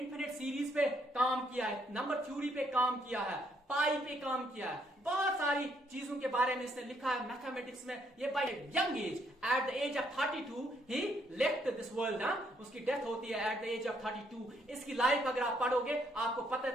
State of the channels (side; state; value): both; normal; correlation 0.71